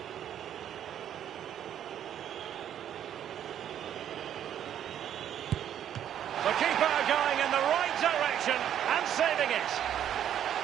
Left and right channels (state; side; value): quieter; left; 10.1 dB